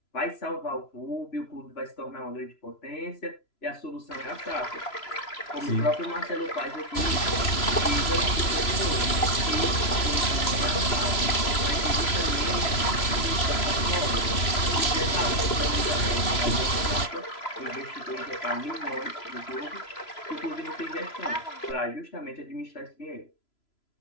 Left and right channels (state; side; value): late; right; 3.0 ms